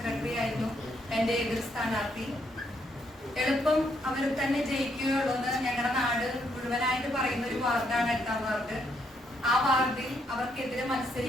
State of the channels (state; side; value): normal; both; correlation 0.74